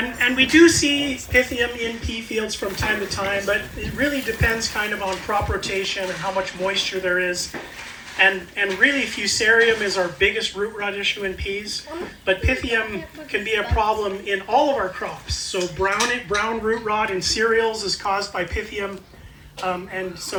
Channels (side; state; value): both; identical; correlation 1.00